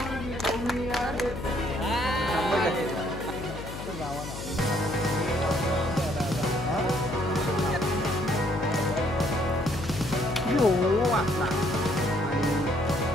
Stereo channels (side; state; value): left; noise; hum, 9 dB below the sound